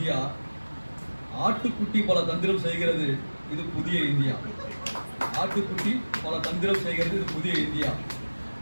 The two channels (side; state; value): both; inverted; correlation -1.00